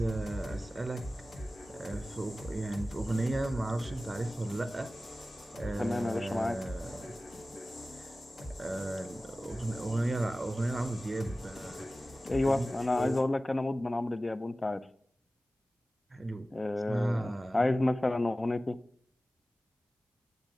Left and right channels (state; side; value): normal; both; correlation 0.96